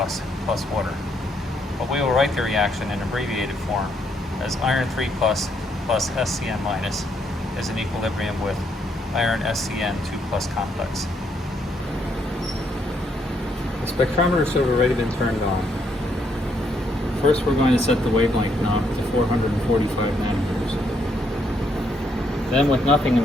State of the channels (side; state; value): both; normal; correlation 0.74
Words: water. But we will write the reaction in abbreviated form as iron 3 plus SCN minus is in equilibrium with iron SCN 2 plus complex. The spectrometer should have already been turned on. First, we're going to set the wavelength knob to 445 nanometers. Then, with nothing in